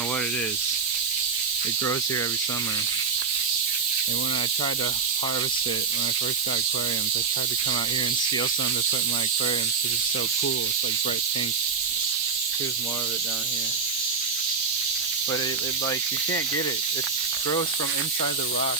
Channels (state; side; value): quieter; left; 5.3 dB